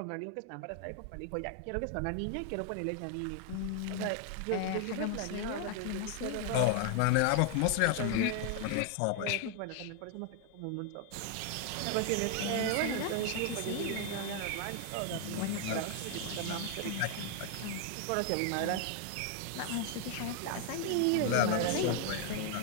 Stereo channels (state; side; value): different; both; correlation 0.00